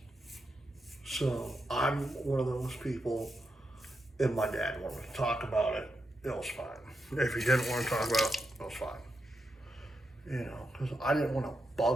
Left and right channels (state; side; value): normal; both; correlation 0.85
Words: so I'm one of those people. If my dad wanted to talk about it, it was fine. If he didn't want to talk about it, it was fine. You know, because I didn't want to